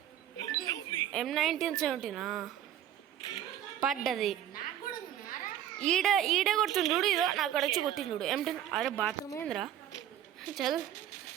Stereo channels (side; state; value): left; quieter; 10.9 dB